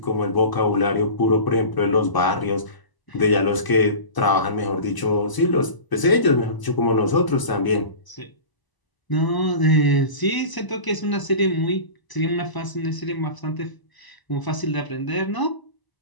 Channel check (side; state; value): right; late; 1.0 ms